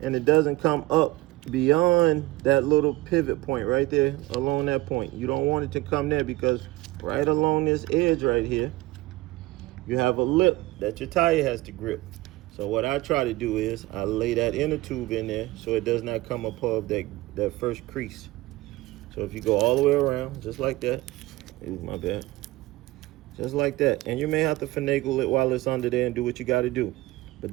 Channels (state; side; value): quieter; left; 19.4 dB